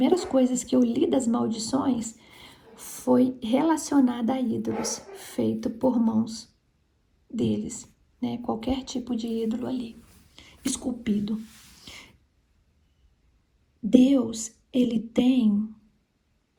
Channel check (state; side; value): identical; both; correlation 1.00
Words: coisas que eu li das maldições foi relacionada a ídolos feito por mãos deles, né? Qualquer tipo de ídolo ali, esculpido. Deus, ele tem